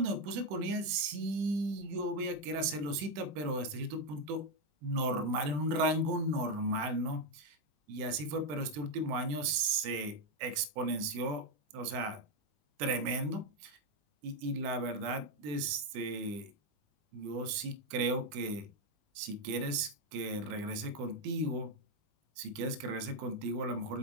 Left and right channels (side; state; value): left; late; 20 ms